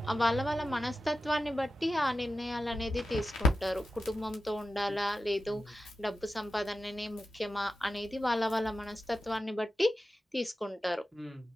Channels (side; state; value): both; normal; correlation 0.92